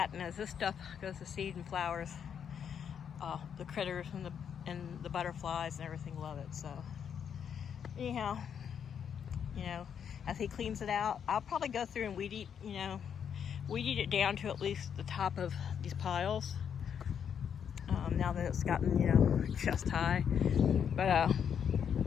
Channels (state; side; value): quieter; right; 7.9 dB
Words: And as this stuff goes to seed and flowers, the critters and the butterflies and everything love it. So anyhow, you know, as he cleans it out, I'll probably go through and weed eat, you know, weeded it down to at least the top of these piles. Now that it's gotten, you know, chest high. But